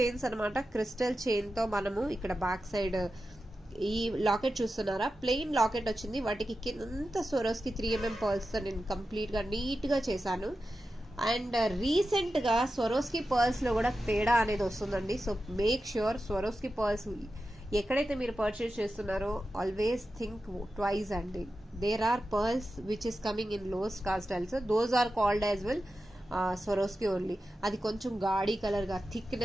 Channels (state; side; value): normal; both; correlation 0.92